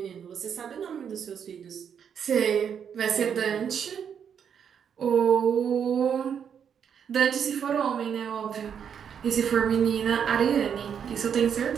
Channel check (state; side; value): quieter; left; 7.8 dB